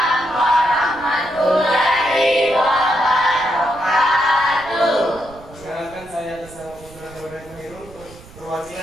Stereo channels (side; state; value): right; noise; rumble, 20 dB below the sound